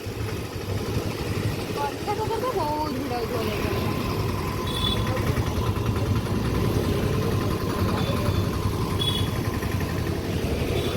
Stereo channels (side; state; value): both; identical; correlation 1.00